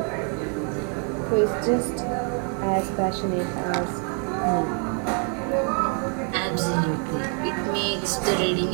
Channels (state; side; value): quieter; left; 39.7 dB